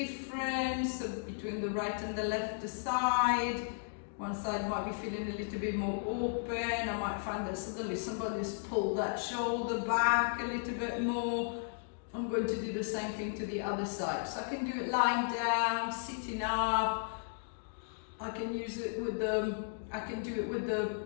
between the right and the left side. One side might be feeling a little bit more open. I might find that suddenly somebody's pulled that shoulder back a little bit more. I'm going to do the same thing to the other side. So I can do it lying down, sitting up. I can use it with I can do it with the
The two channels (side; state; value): right; silent; digital silence